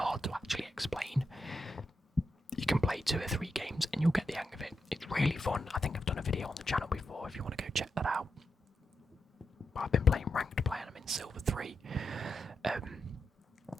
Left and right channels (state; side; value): normal; both; correlation 0.86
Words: to actually explain. You can play 2 or 3 games and you'll get the hang of it. It's really fun. I think I've done a video on the channel before if you want to go check that out. I've been playing ranked play and I'm in Silver 3.